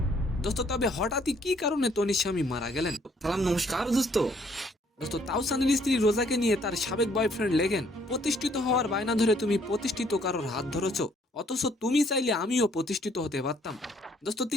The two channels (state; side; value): normal; both; correlation 0.65